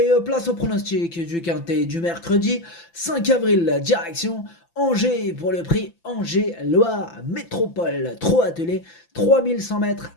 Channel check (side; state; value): right; late; 5.9 ms